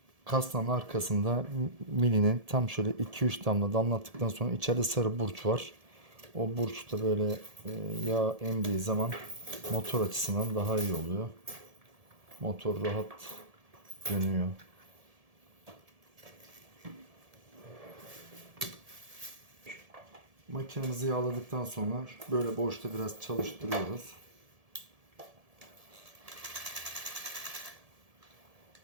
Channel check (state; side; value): late; left; 1.7 ms